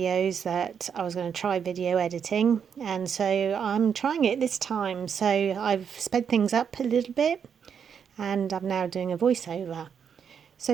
that I was going to try video editing, and so I'm trying it this time. So, I've sped things up a little bit, and I'm now doing a voiceover. So,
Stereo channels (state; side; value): quieter; left; 7.3 dB